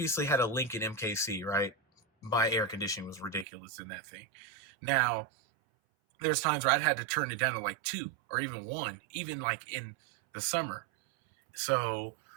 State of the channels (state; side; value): drops out; left; at 3.5 s